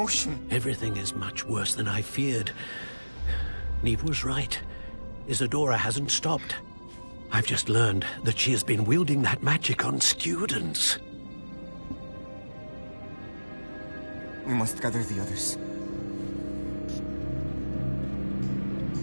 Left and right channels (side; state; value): both; inverted; correlation -1.00